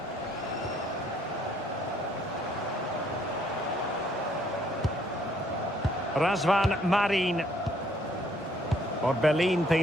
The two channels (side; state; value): both; normal; correlation 0.65